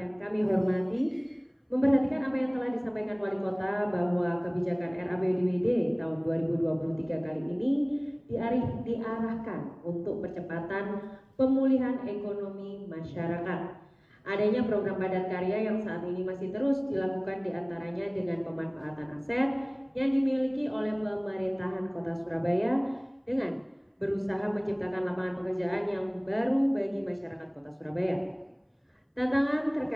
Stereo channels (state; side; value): identical; both; correlation 1.00